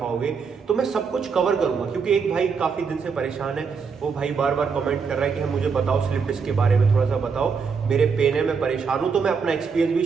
तो मैं सब कुछ कवर करूंगा। क्योंकि एक भाई काफी दिन से परेशान है, वो भाई बार बार कमेंट कर रहा है कि मुझे बताओ स्लिप डिस्क के बारे में थोड़ा सा बताओ, मेरे पेन है, मैं परेशान हूं। तो मैं अपना एक्सपीरियंस भी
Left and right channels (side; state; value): left; quieter; 5.6 dB